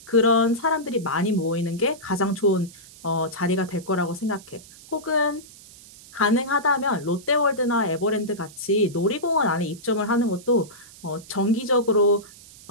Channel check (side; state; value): right; noise; hiss, 21 dB below the sound